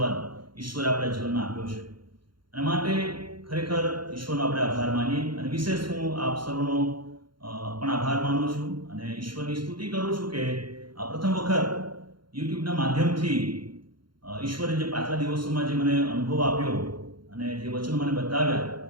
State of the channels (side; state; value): left; late; 0.73 ms